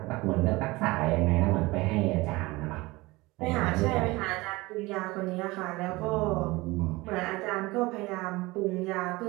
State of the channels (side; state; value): left; quieter; 21.6 dB